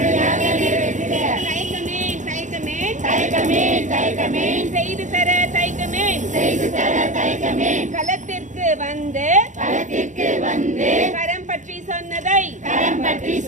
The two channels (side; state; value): left; late; 0.36 ms